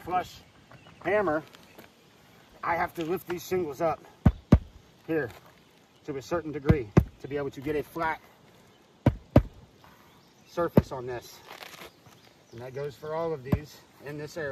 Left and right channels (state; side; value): identical; both; correlation 1.00